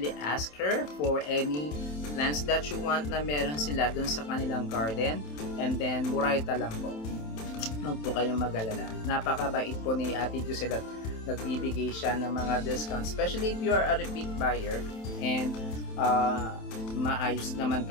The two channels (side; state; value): right; late; 27 ms